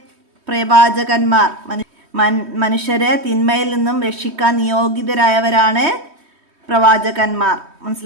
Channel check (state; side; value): late; left; 3.2 ms